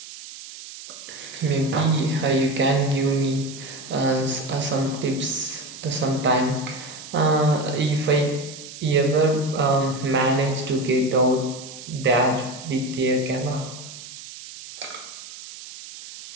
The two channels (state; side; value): noise; right; hiss, 14 dB below the sound